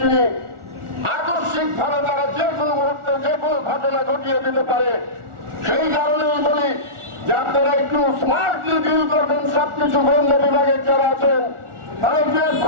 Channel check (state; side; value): late; left; 1.4 ms